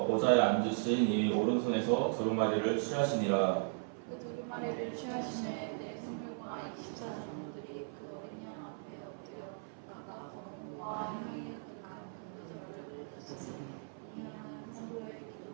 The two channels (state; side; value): silent; left; 53 dB below the other